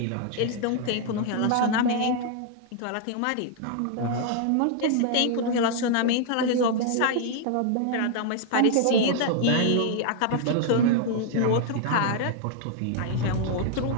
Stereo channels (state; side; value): different; both; correlation 0.00